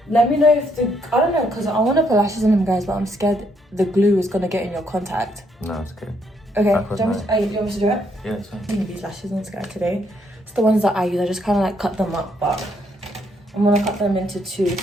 Let me know if I don't know, because I want to put lashes on them, guys, but I'm scared the glue is going to get in your contact. No, it's okay. Okay, do you I'll put want me to do it? Yeah, it's fine. I'm gonna these lashes on Sky today. It's the ones that I use. I just kind of like cut them up, but I'm gonna cut them into 2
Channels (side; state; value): both; normal; correlation 0.72